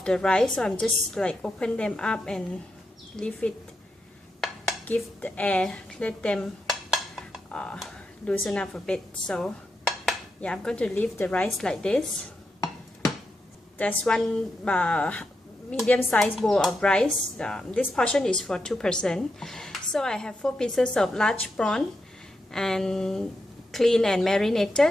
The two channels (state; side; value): normal; both; correlation 0.85